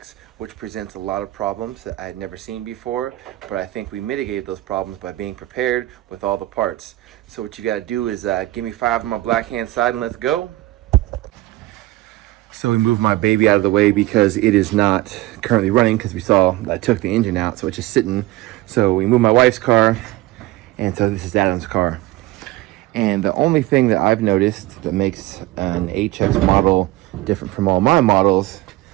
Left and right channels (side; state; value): left; quieter; 17.7 dB